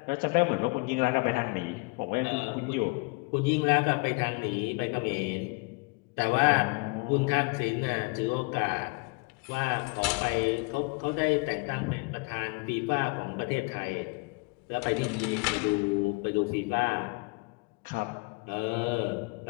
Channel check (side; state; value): right; quieter; 29.7 dB